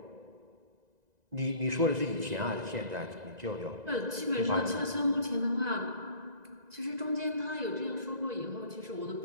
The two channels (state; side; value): late; left; 2.0 ms